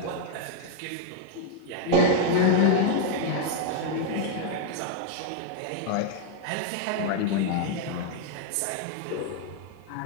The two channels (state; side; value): different; both; correlation 0.00